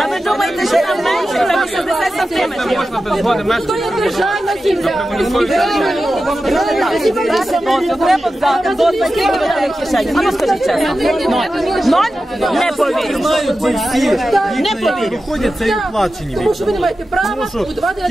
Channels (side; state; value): both; normal; correlation 0.93